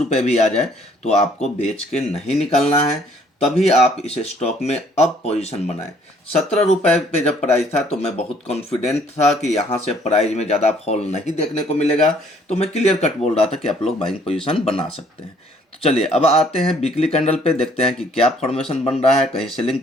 भी आ जाए तो आपको बेच के नहीं निकलना है। तभी आप इस स्टॉक में अब पोजीशन बनाएं। 17 रुपये पे जब प्राइस था तो मैं बहुत कॉन्फिडेंट था कि यहाँ से प्राइस में ज़्यादा फॉल नहीं देखने को मिलेगा। तो मैं क्लियर कट बोल रहा था कि आप लोग बाइंग पोजीशन बना सकते हैं। तो चलिए अब आते हैं वीकली कैंडल पे, देखते हैं कि क्या फॉर्मेशन बन रहा है, कहीं सेलिंग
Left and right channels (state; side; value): normal; both; correlation 0.61